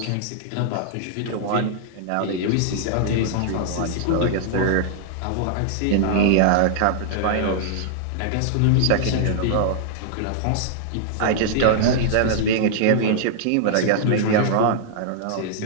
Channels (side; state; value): both; different; correlation -0.01